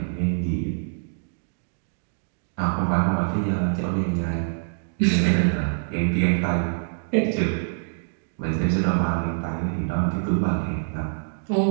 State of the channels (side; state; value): left; silent; digital silence